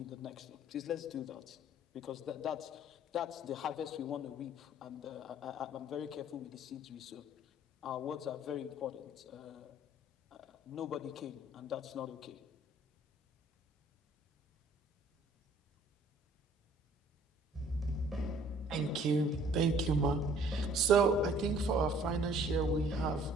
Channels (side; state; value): both; normal; correlation 0.56